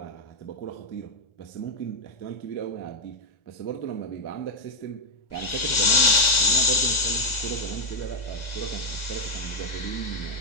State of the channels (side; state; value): right; late; 1.4 ms